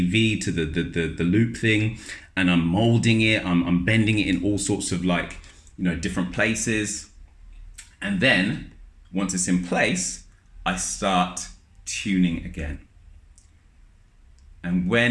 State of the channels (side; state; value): both; identical; correlation 1.00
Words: to the loop thing, and I'm molding it. I'm bending it in all sorts of like, different places. And then once it's in place, I start tuning again. And